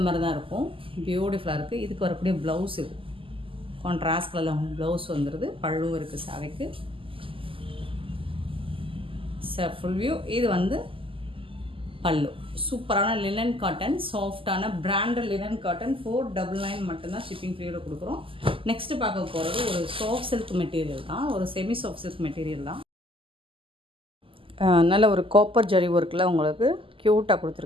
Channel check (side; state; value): left; late; 0.25 ms